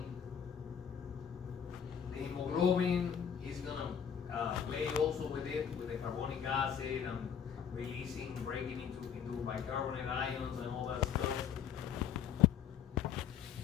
The hemoglobin is gonna play also with it, with the carbonic acid and releasing, breaking into bicarbonate ions and all that stuff.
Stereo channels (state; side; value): quieter; right; 8.1 dB